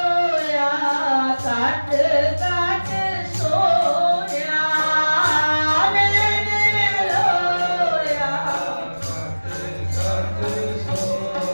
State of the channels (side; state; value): both; inverted; correlation -1.00